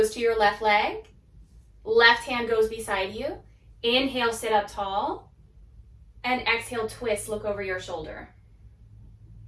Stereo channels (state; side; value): identical; both; correlation 1.00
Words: to your left leg. Left hand goes beside you. Inhale, sit up tall. And exhale, twist, look over your shoulder.